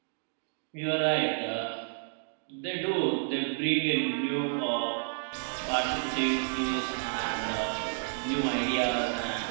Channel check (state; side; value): silent; left; digital silence